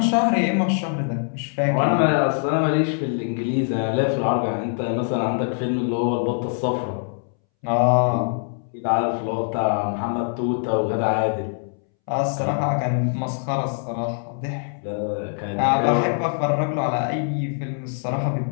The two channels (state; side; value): silent; right; 63 dB below the other